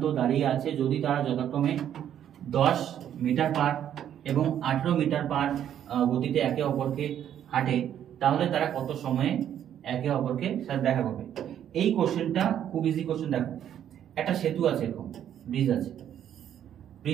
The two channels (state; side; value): quieter; left; 10.1 dB